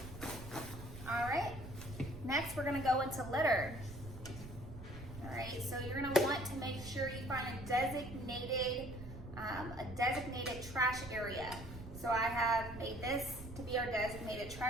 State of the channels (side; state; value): right; noise; rumble, 12 dB below the sound